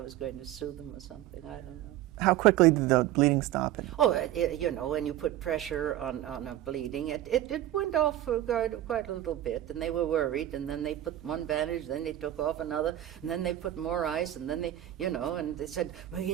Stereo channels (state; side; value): quieter; left; 13.3 dB